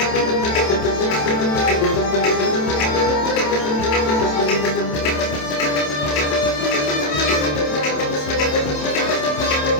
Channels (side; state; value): right; late; 27 ms